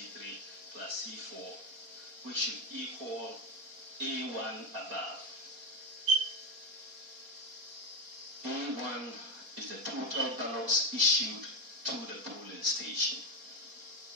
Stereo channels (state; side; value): late; left; 4.2 ms